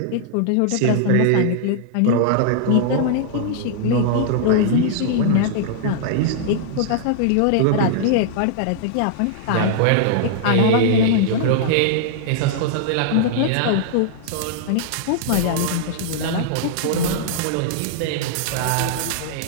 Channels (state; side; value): different; both; correlation -0.01